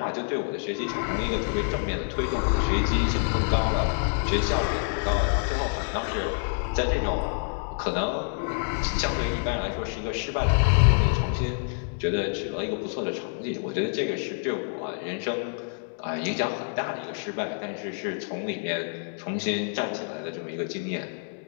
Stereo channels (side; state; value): right; silent; 60 dB below the other